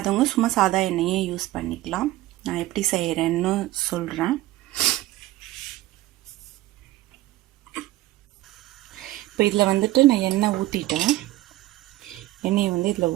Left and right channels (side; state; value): left; quieter; 16.6 dB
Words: சும்மா சாதா எண்ணெயே யூஸ் பண்ணிக்கலாம். நான் எப்படி செய்கிறேன்னு சொல்கிறேன். இப்போ இதில் வந்துட்டு நான் எண்ணெயை வந்து இதில்